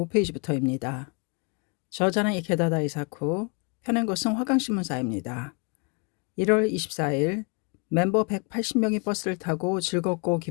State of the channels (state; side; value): quieter; right; 33.9 dB